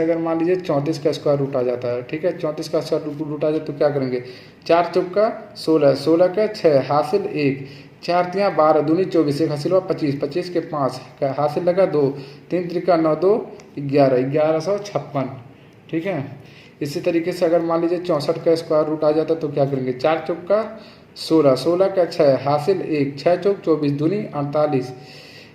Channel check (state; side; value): identical; both; correlation 1.00